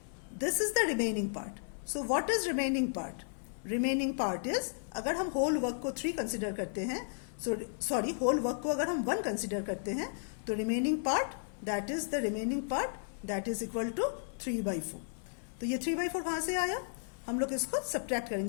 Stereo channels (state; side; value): silent; right; 55 dB below the other